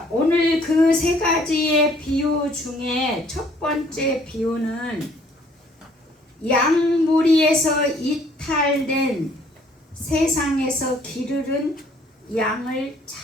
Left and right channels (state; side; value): normal; both; correlation 0.61